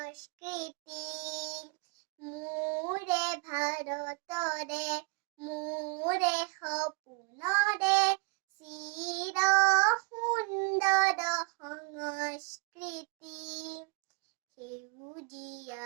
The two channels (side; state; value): left; quieter; 30.0 dB